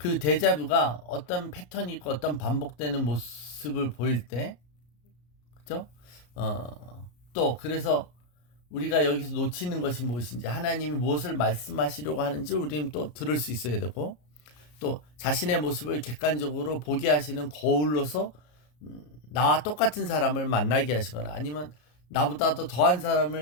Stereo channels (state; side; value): late; right; 33 ms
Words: 데자뷰가 어떤 패턴이 있고 어떤 반복되는 모습을 보일 때, 그죠? 또 그래서 우리가 여기서 놓치는 것이 무엇인지 하나님이 무엇을 말씀하시려고 하는지 우리는 또 들을 수 있어야 되고 또 자신의 모습을 객관적으로 보게 하시는 거울로서 나와 똑같은 사람을 만나게 하시거나 아니면 나보다 더 더한